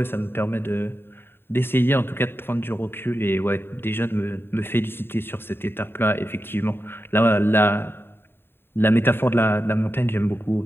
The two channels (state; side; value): late; right; 0.11 ms